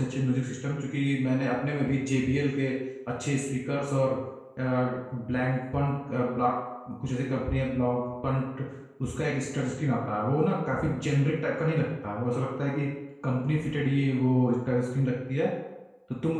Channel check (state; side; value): identical; both; correlation 1.00